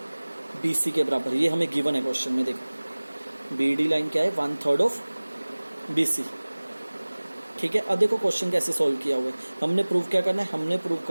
BC के बराबर। ये हमें गिवन है क्वेश्चन में। देखो BD लाइन क्या है, 1/3 ऑफ BC। ठीक है, अब देखो क्वेश्चन कैसे सॉल्व किया हुआ है। हमने प्रूव क्या करना है, हमने प्रूव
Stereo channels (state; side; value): inverted; both; correlation -1.00